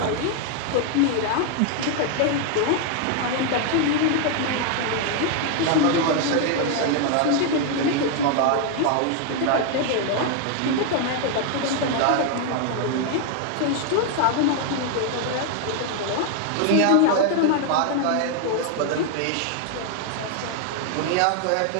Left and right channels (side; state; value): both; different; correlation 0.00